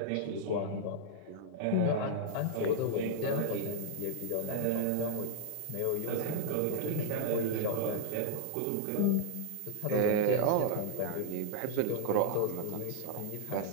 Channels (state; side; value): different; both; correlation -0.01